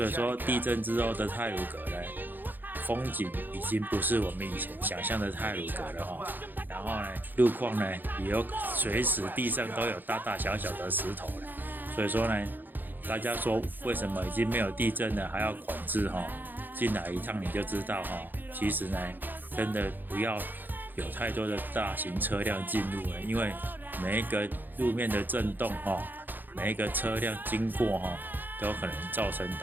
以说地震之后的太鲁阁呢，风景已经不是我们以前想象的太鲁阁了哈。然后呢，路况呢也有随时地上都有大大小小的石头了。所以说呢，大家说为什么已经没有地震了还要管制哈？进来一趟你就知道哈。其实呢，真的不要有太多的大型车辆进入了，因为每一个路面的震动哈，每一个车辆经过哈，都有可能造成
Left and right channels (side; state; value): left; late; 0.089 ms